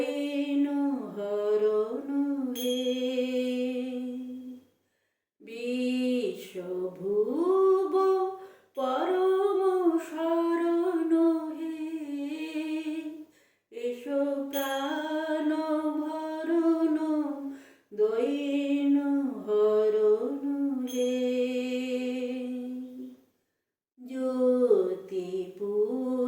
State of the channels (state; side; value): identical; both; correlation 1.00